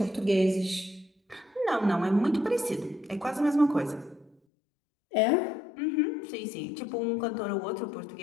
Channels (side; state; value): right; drops out; at 4.4 s